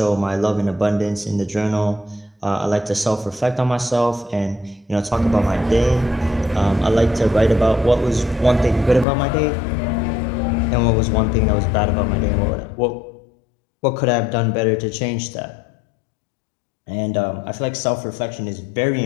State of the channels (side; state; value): right; drops out; at 9.1 s